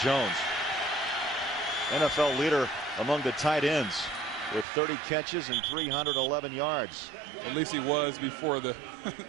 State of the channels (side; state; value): left; drops out; at 4.7 s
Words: Jones. NFL leader among the tight ends with 30 catches and 311 yards. At least he was before the